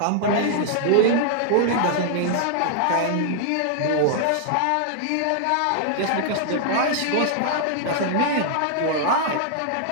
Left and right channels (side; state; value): both; different; correlation -0.01